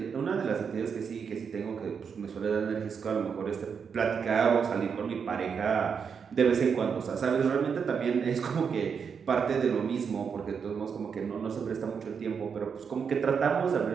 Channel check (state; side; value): quieter; left; 6.5 dB